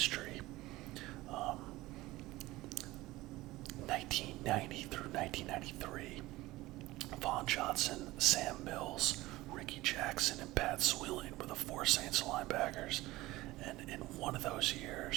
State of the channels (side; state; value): left; quieter; 18.6 dB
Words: 1990 through 1993, Von Johnson, Sam Mills, Ricky Jackson, and Pat Swilling were the 4 Saints linebackers. And in one of those